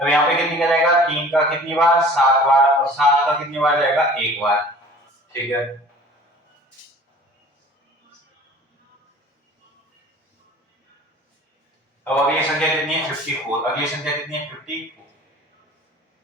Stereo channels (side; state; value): both; normal; correlation 0.46